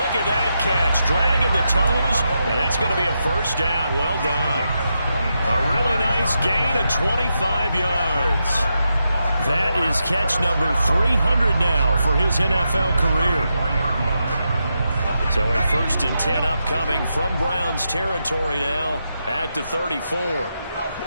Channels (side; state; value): both; inverted; correlation -0.85